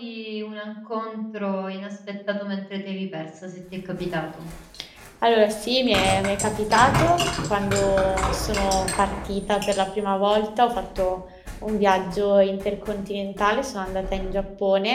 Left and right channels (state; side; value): identical; both; correlation 1.00